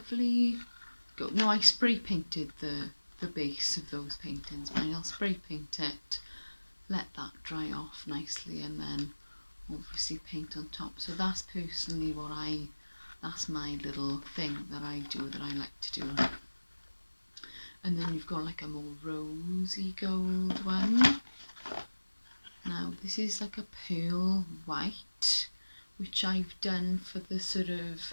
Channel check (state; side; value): inverted; both; correlation -1.00